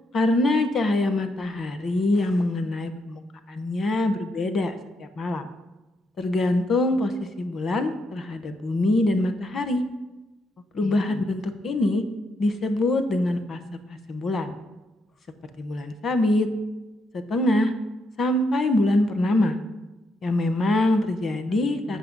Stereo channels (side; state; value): both; normal; correlation 0.79